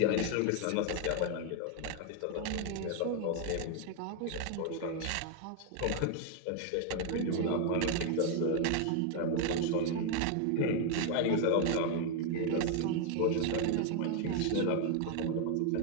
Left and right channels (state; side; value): different; both; correlation 0.00